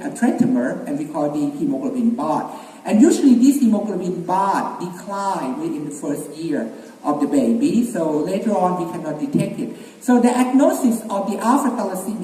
a tetramer, and we call the hemoglobin bath. And usually this hemoglobin bath declines within the first year of the baby, so later on we cannot detect it. So the diagnosis of the alpha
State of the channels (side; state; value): both; identical; correlation 1.00